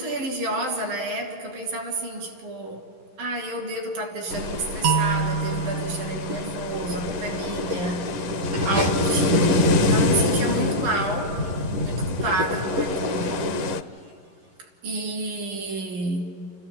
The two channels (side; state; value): left; late; 11 ms